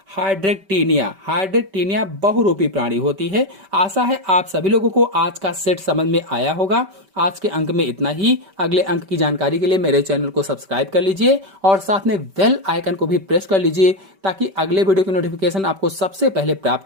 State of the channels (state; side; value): late; left; 5.2 ms